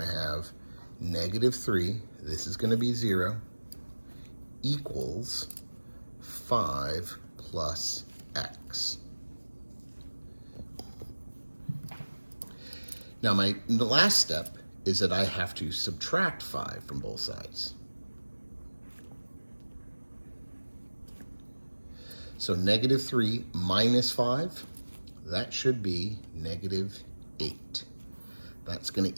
have negative 3, this is going to be 0, equals 5 plus x. Now the last step is that I have to subtract 5 from both sides. So negative 3 minus 5, that should be negative 8. That's going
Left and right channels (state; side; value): inverted; both; correlation -1.00